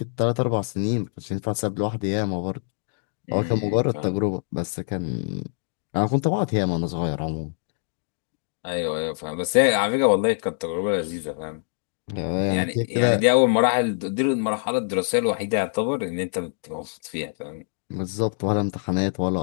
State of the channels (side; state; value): right; silent; digital silence